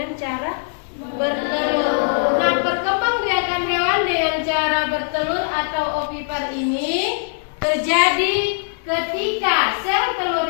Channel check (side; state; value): right; silent; digital silence